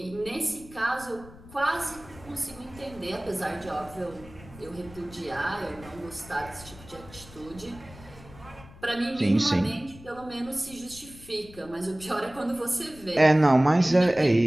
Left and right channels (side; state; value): left; noise; rumble, 19 dB below the sound